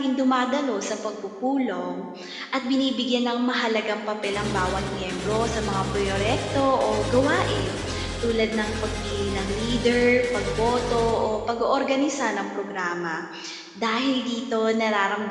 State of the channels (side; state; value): both; identical; correlation 1.00